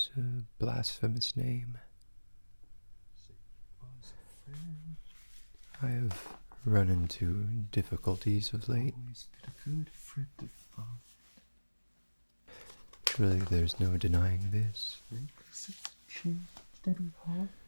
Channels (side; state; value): both; inverted; correlation -1.00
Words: a blasphemous name. I have run into difficulties of late. Always been a good friend of mine. Surely there's no denying this.